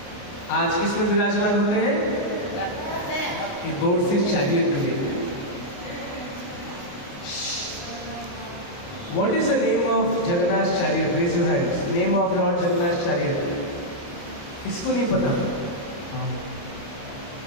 आज किसमें विराजमान होते हैं? बोर्ड से chariot today. What is the name of Jagannath chariot? Raise your hands. Name of Lord Jagannath chariot. किसको नहीं पता?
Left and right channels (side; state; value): right; late; 29 ms